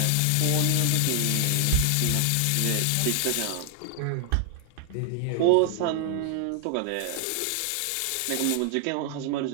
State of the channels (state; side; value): different; both; correlation 0.00